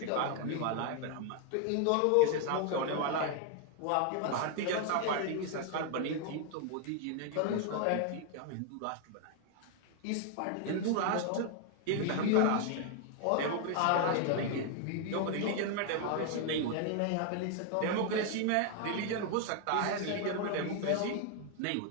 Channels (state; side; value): different; both; correlation 0.00